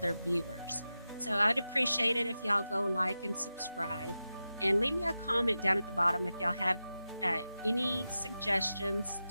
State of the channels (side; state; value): both; inverted; correlation -0.92